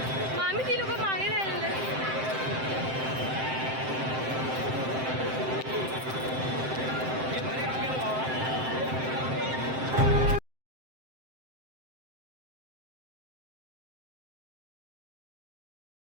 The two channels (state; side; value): late; left; 7.7 ms